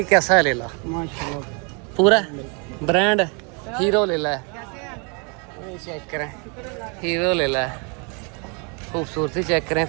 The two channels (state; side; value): quieter; left; 34.3 dB